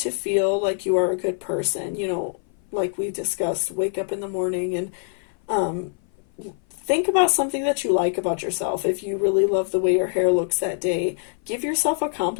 feel like you are a good person. Like we discussed, wake up in the morning and think about something that you like about yourself. If you really love the way your hair looks that day, give yourself a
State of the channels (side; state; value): right; silent; 57 dB below the other